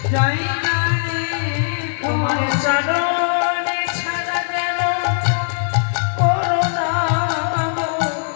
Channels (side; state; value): right; silent; digital silence